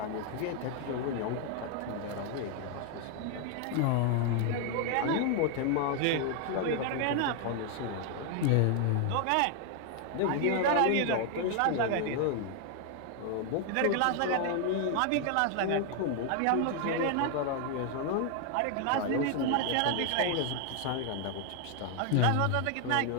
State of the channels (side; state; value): both; different; correlation 0.00